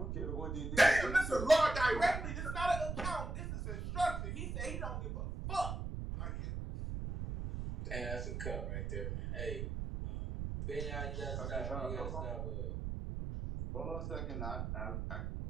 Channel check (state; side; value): noise; right; rumble, 3 dB below the sound